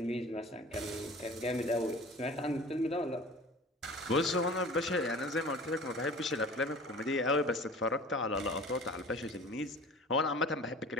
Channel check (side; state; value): both; normal; correlation 0.42